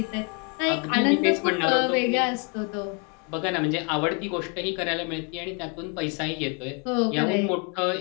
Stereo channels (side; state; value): right; quieter; 35.0 dB